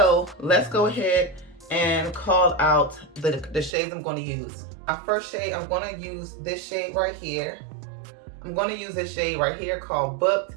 let's go ahead and call out the shades I'm going to use. My first shade, I'm going to use this shade right here. I'm going to use this shade right here called Booked,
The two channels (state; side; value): drops out; left; at 3.7 s